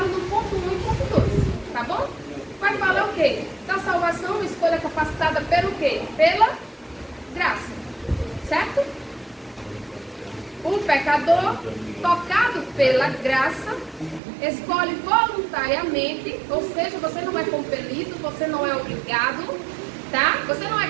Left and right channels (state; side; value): drops out; left; at 14.2 s